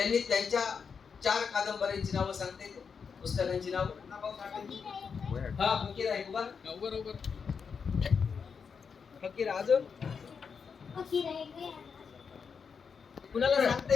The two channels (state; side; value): quieter; right; 6.0 dB